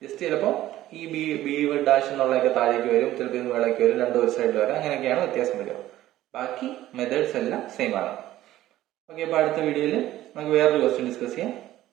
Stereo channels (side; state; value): left; quieter; 14.4 dB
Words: ജസ്റ്റ് ചിലപ്പോൾ ഈ ബി ഡാഷ് എന്നുള്ളതൊക്കെ താഴേക്ക് വരും, ചിലപ്പോൾ ഇത് വേളയ്ക്ക് വരും, രണ്ടും ഒരു സൈഡിൽ വരാം. അങ്ങനെയൊക്കെയാണ് വ്യത്യാസം വരിക. ബാക്കി മെത്തേഡ്സ് എല്ലാം സെയിം ആണ്. ഓക്കെ, അപ്പോൾ അടുത്ത വീഡിയോയിൽ നമുക്ക് വേറൊരു ക്വസ്റ്റ്യൻ ഡിസ്കസ് ചെയ്യാം.